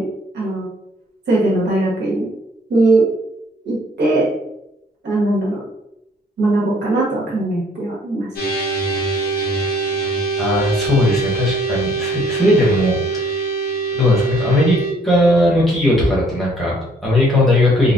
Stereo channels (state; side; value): normal; both; correlation 0.62